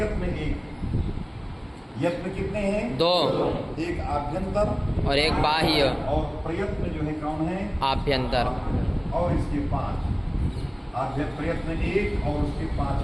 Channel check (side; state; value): both; identical; correlation 1.00